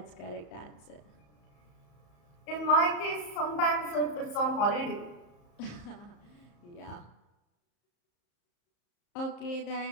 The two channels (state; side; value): late; right; 34 ms